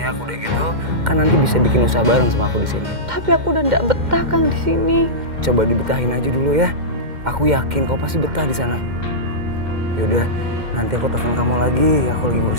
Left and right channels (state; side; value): late; left; 2.1 ms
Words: udah gitu kan nanti bisa bikin usaha bareng sama aku di sini. Tapi aku udah nggak betah Kang di sini. Coba dibetahin aja dulu ya. Aku yakin kau pasti betah di sana. Yaudah, nanti aku telepon kamu lagi. Aku lagi